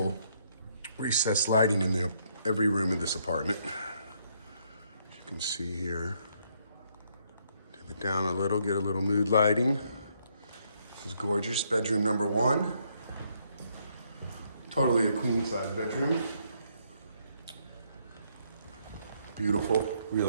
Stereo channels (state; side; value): inverted; both; correlation -0.71